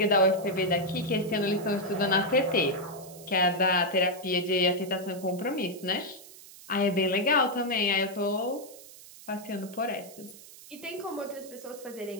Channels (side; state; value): right; noise; hiss, 18 dB below the sound